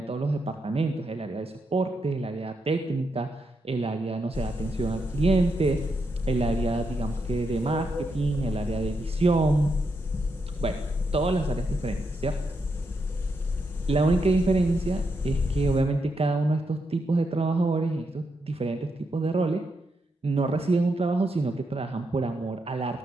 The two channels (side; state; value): both; normal; correlation 0.82